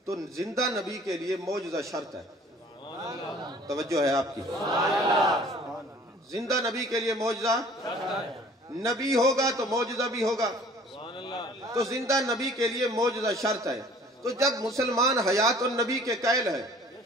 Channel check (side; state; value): both; normal; correlation 0.51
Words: تو زندہ نبی کے لیے معجزہ شرط ہے۔ توجہ ہے آپ کی، زندہ نبی کے لیے معجزہ، نبی ہوگا تو معجزہ بھی ہوگا، تو زندہ نبی کے لیے معجزہ شرط ہے۔ تو جب مسلمان حیات النبی کے قائل ہے،